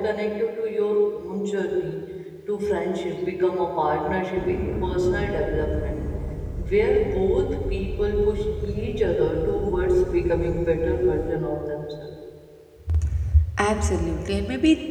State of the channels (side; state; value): both; identical; correlation 1.00